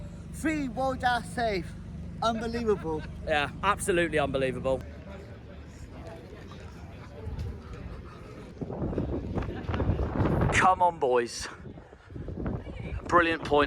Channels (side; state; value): both; identical; correlation 1.00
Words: 3 world safe. Unbelievable. Yeah, absolutely unbelievable. Come on, boys. Brilliant